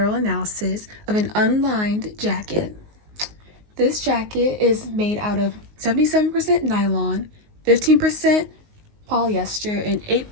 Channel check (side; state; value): left; late; 19 ms